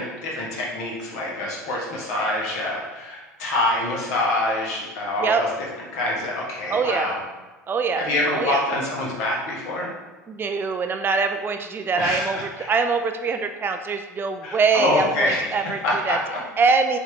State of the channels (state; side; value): normal; both; correlation 0.43